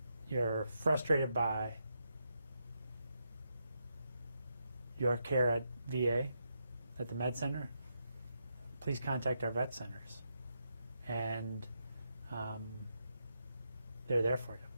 you're frustrated by your care at VA, at the med center, please contact our vet centers. And they're there for you.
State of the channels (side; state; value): both; inverted; correlation -0.83